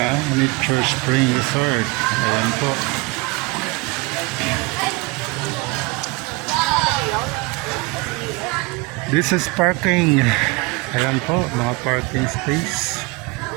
Nature Spring Resort. Ayan po. This is parking. Ayan po, mga parking space.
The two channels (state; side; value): quieter; left; 25.3 dB